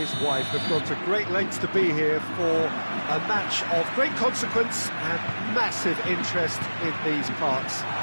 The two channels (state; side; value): inverted; both; correlation -1.00